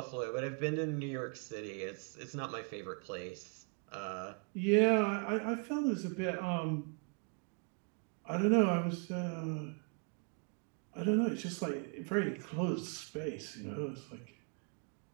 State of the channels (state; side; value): quieter; left; 39.1 dB